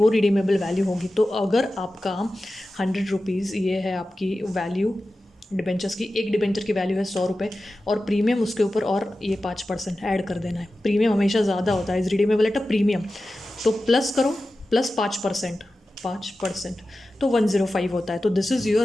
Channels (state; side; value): normal; both; correlation 0.94